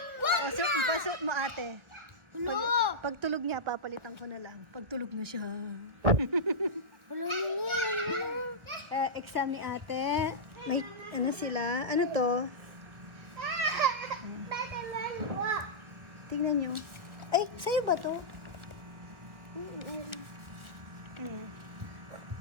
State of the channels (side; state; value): left; late; 1.6 ms